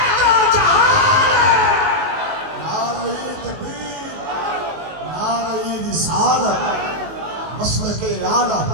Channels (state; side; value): late; left; 19 ms